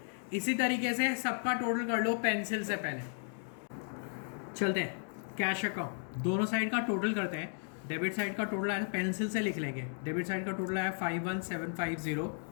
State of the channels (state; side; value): silent; right; 55 dB below the other